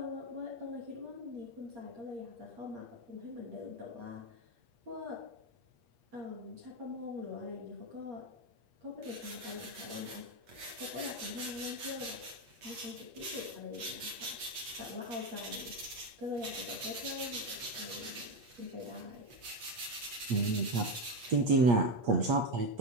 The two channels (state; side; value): late; left; 8.5 ms